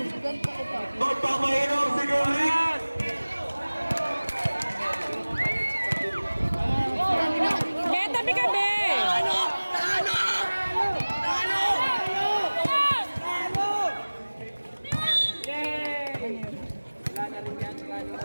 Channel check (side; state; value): both; inverted; correlation -1.00